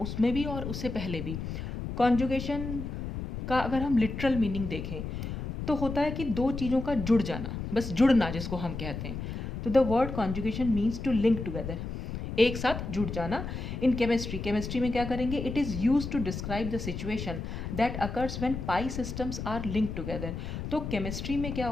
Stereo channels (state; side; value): noise; left; rumble, 6 dB below the sound